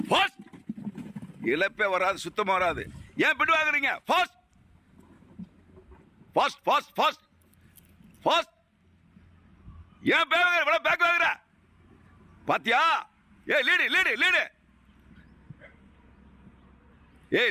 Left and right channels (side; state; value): both; identical; correlation 1.00